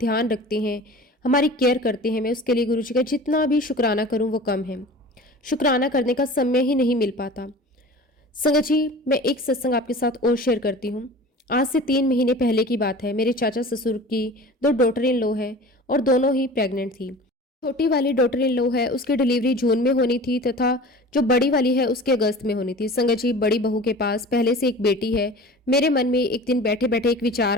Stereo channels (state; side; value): normal; both; correlation 0.39